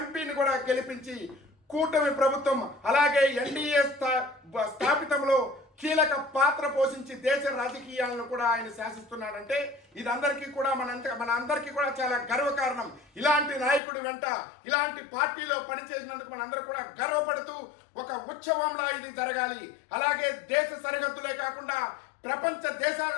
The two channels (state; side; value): drops out; right; at 13.8 s